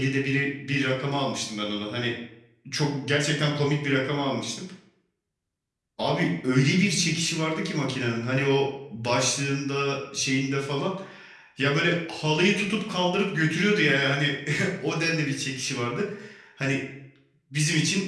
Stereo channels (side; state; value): both; identical; correlation 1.00